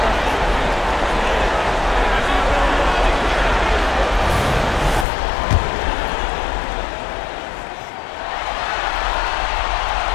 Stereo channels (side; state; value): right; drops out; at 5.1 s